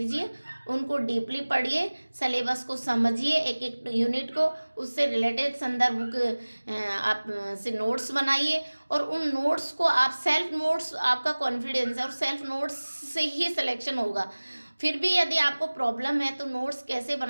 उनको डीपली पढ़िए, सिलेबस को समझिए, एक एक यूनिट को, उससे रिलेटेड संदर्भ बुक आप से नोट्स बनाइए, और उन नोट्स को आप सेल्फ नोट्स, आपका कॉन्फिडेंस है और सेल्फ नोट्स से ही सिलेक्शन होगा। फिर भी यदि आपको प्रॉब्लम है तो नोट्स कैसे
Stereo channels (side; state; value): both; inverted; correlation -1.00